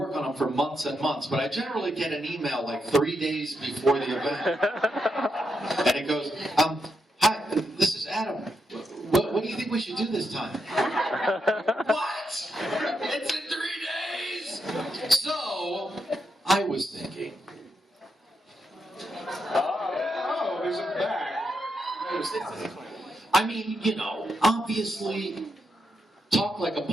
on them for months and months, but I generally get an email like 3 days before the event. And it goes, hi, this is Adam. What do you think we should do this time? What? It's in 3 days? So, I was thinking. Oh, there's a bag. I mean, you know, obviously, Talk Like a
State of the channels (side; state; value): both; normal; correlation 0.82